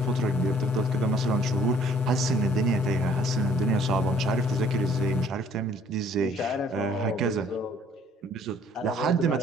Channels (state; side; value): normal; both; correlation 0.59